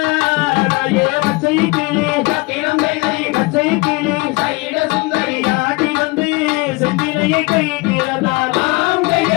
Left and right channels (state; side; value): quieter; right; 24.8 dB